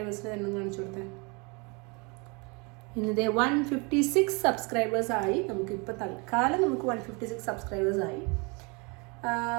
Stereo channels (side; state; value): left; quieter; 30.4 dB